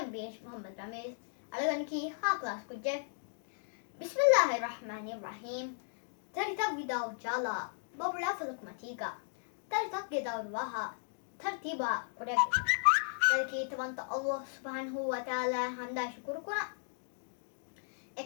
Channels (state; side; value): silent; right; digital silence